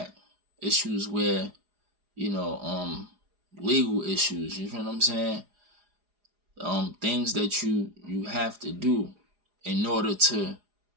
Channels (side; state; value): left; late; 4.8 ms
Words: Issues where, you know, legal issues, you feel what I'm saying? Things that you have to do in order to